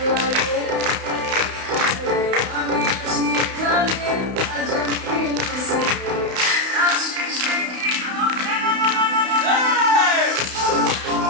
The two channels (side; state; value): left; late; 32 ms